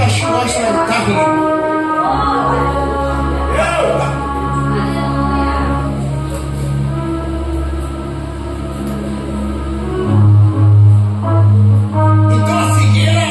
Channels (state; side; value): identical; both; correlation 1.00